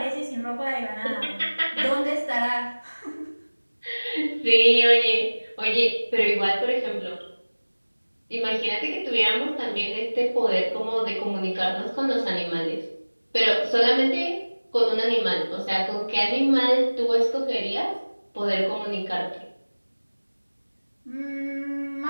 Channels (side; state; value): both; inverted; correlation -1.00